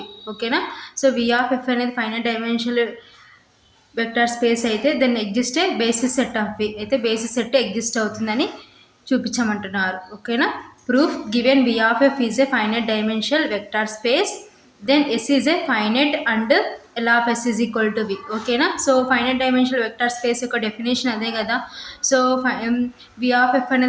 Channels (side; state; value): both; identical; correlation 1.00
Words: ఓకేనా. So V of f అనేది finite dimensional vector space అయితే then exist a basis set of V అయితే basis set exist అవుతుందని చూపించమంటున్నారు. ఓకేనా. Proof, given V of f is a finite dimensional vector space then S is a finite and L of S is equal to V. ఓకేనా. So finite dimensional vector space యొక్క definition అదే కదా. So V of f